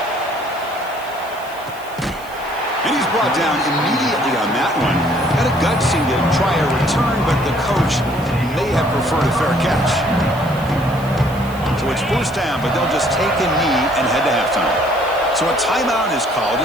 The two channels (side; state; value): right; noise; hiss, 21 dB below the sound